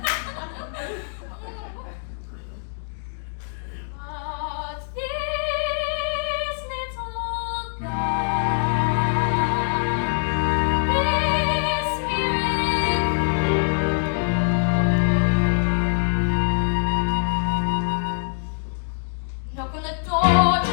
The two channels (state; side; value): silent; right; digital silence